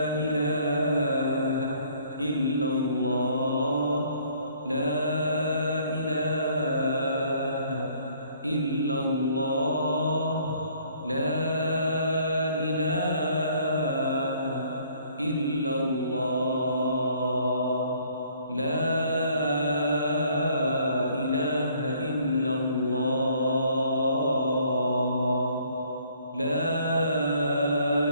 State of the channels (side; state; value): both; inverted; correlation -0.60